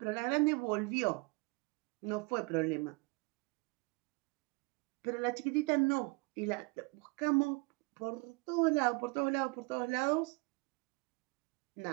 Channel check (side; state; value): left; quieter; 28.5 dB